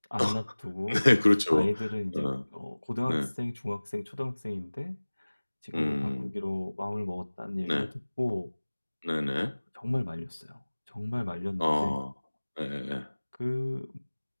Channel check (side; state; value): both; inverted; correlation -1.00